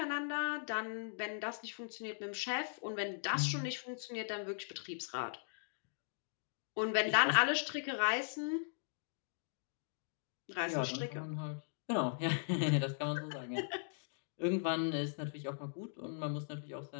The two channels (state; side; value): silent; right; digital silence